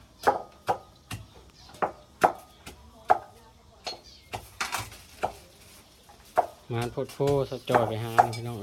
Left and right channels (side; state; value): both; identical; correlation 1.00